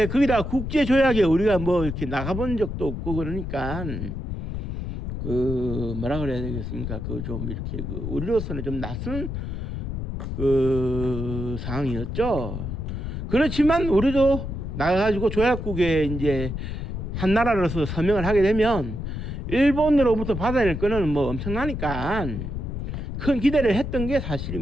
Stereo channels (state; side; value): noise; left; rumble, 5 dB below the sound